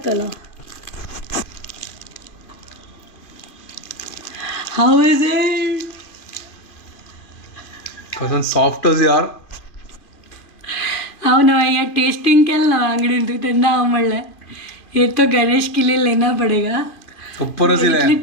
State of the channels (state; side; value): late; right; 2.5 ms